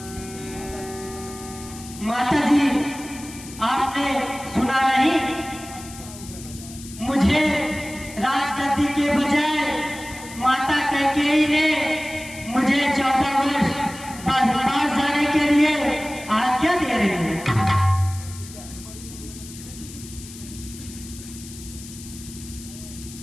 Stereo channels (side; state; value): left; noise; hiss, 15 dB below the sound